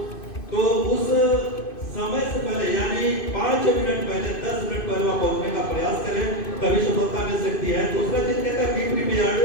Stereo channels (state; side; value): late; right; 2.6 ms